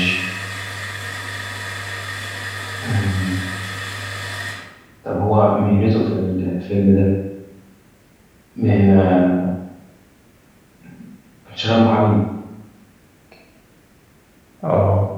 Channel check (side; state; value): both; identical; correlation 1.00